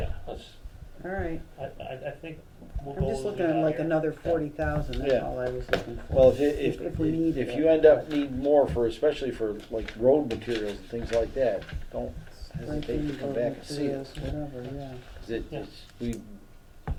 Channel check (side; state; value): both; identical; correlation 1.00